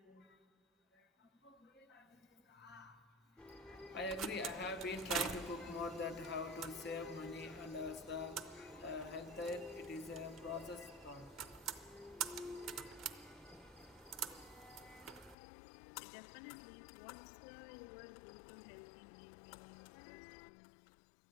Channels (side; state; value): right; drops out; at 15.4 s